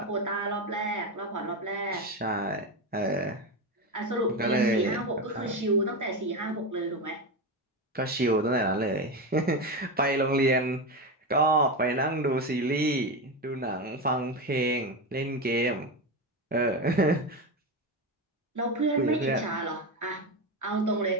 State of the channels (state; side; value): normal; both; correlation 0.16